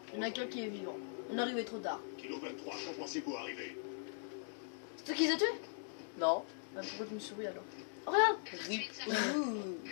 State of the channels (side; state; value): right; silent; digital silence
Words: Il y en a qu'un qui est vivant. On est arrivé trop tard. Kilo 23, quand pensez-vous arriver? C'est toi qui les as tués? Non. Bah, pourquoi tu me souris alors? Oh, regarde. Rip. Ouh.